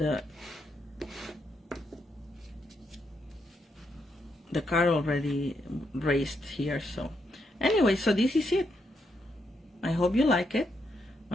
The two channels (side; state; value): both; normal; correlation 0.80